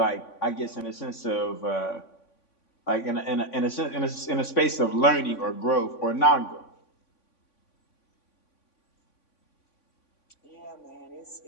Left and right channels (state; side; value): late; right; 3.5 ms